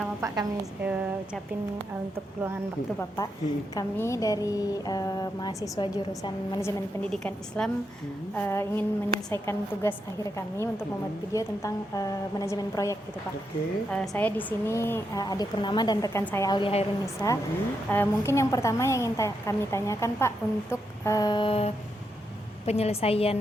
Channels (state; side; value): normal; both; correlation 0.83